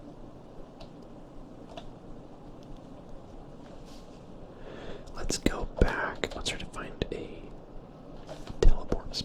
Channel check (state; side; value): identical; both; correlation 1.00